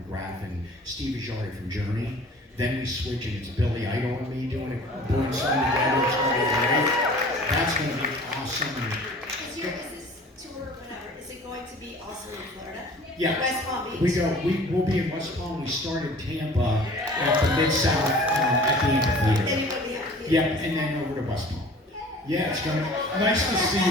and Steve Ajari from Journey. Then we switch and it's Billy Idol and me doing it, doing something together. It's going to be great. That's going to be awesome. Is this tour, whatever, is it going to be also in Florida? Yeah, West Palm Beach? we'll be in West Palm. We started Tampa at the Mid-South at the amphitheater. Then you go to the amphitheater. Yep, and then over to West Palm. Yeah, it's gonna nice to see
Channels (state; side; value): normal; both; correlation 0.46